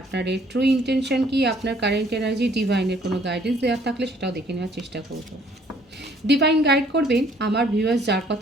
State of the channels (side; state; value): both; normal; correlation 0.61